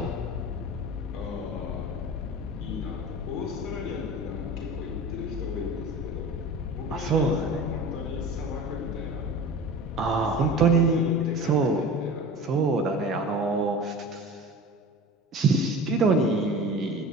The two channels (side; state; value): both; normal; correlation 0.36